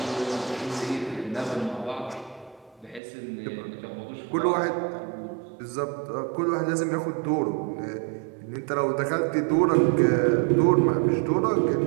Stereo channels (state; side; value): drops out; left; at 3.0 s